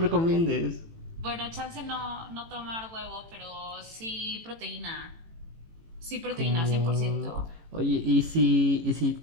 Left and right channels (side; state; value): left; late; 18 ms